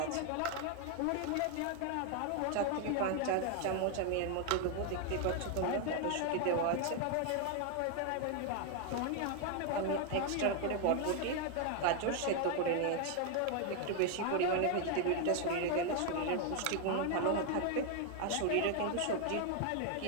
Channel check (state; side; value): different; both; correlation 0.00